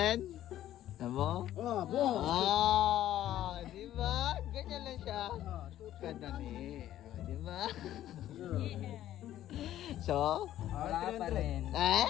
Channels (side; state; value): right; quieter; 12.7 dB